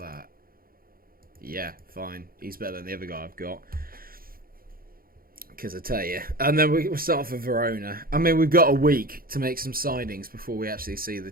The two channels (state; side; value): late; left; 0.42 ms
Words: Yeah, fine. He's better than the other guy I've got. Because I tell you. And then we'll start off with Verona. I mean, we've got a week to make some signings before we actually see the